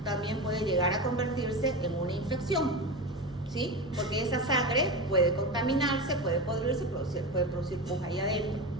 también puede llegar a convertirse en una infección, ¿sí? Porque esa sangre puede contaminarse, puede podrirse, puede producir pus ahí adentro.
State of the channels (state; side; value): normal; both; correlation 0.22